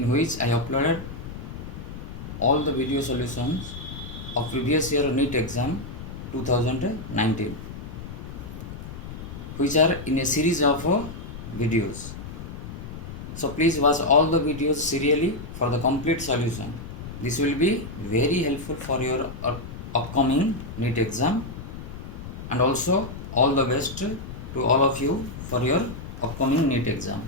which I uploaded all the video solutions of previous year NEET exam 2019, which are in a series of videos. So please watch all the videos serially for the complete solution. This will be very helpful for your upcoming NEET exam, and also all the best to all of you for your upcoming NEET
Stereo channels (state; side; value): noise; left; rumble, 10 dB below the sound